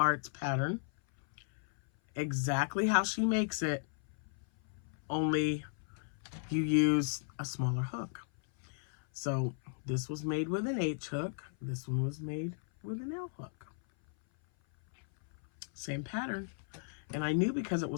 pattern. Exactly how she makes it, only you use a smaller hook. So this was made with an H hook. This one was made with an L hook. Same pattern. And I knew because it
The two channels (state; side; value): silent; right; 54 dB below the other